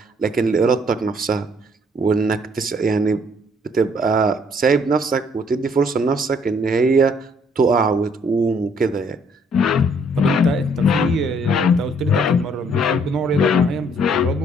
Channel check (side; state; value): both; normal; correlation 0.64